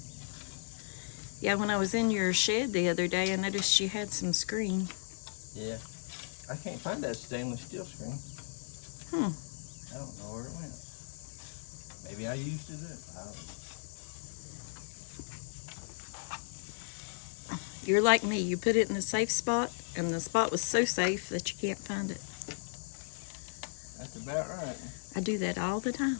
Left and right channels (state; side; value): silent; right; digital silence